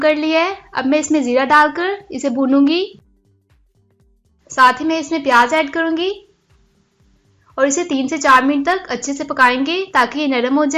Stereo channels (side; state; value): both; identical; correlation 1.00